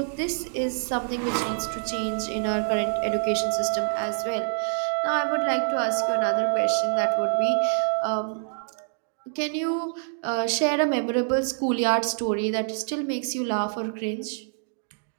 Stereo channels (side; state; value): left; silent; digital silence